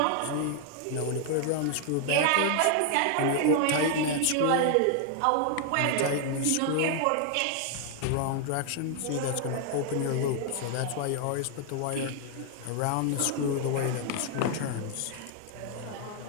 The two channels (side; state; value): both; different; correlation 0.00